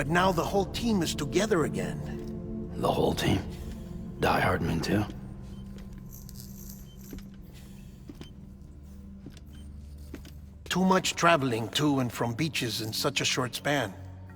now the whole team is together again. The whole team? Die Hardman too? Too much traveling to and from beaches in such a short span.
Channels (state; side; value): identical; both; correlation 1.00